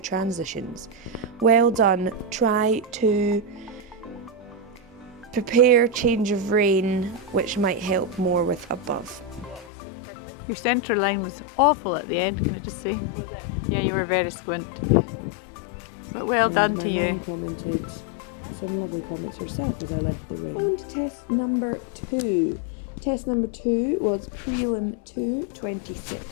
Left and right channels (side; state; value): right; drops out; at 9.7 s